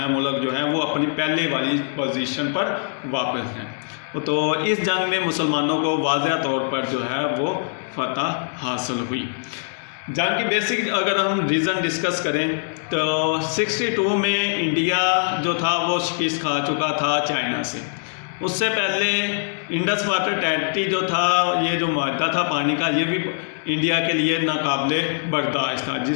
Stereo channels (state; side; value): silent; right; digital silence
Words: ملک جو ہیں وہ اپنی پہلے والی پوزیشن پر واپس ہیں۔ تو اس جنگ میں مسلمانوں کو واضح طور پر جو ہے وہ فتح حاصل ہوئی. جنگ کی بیسک اگر ہم ریزن ڈسکس کریں تو 62 میں انڈیا جو تھا وہ شکست کھا چکا تھا چائنا سے. اس سے پہلے انڈس واٹر ٹریٹی جو تھا، یہ جو معاہدہ تھا پانی کا، یہ بھی انڈیا کے لیے ناقابل برداشت تھا،